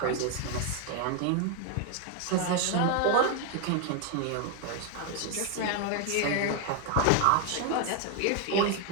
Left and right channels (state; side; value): different; both; correlation 0.01